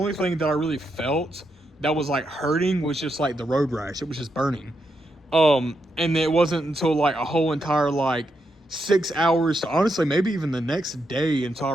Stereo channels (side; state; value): both; normal; correlation 0.82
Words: thing that I really felt that was like hurting was just like the road rash. It was just burning. And it wasn't until like a whole entire like 6 hours to honestly maybe even the next day until I